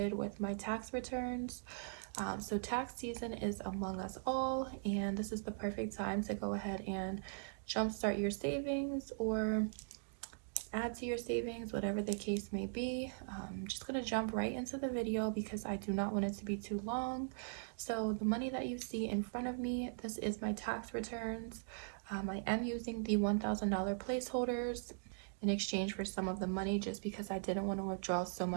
with my tax returns. So tax season is among us all, and this is the perfect time to go ahead and jumpstart your savings or add to your savings, whatever the case may be. I'm just going to jump right into the video because I do not want it to be too long. So the money that you see in front of me, this is my tax returns. I am using the $1,000 placeholders in exchange for some of the money just because I didn't want to withdraw so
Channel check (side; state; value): left; silent; digital silence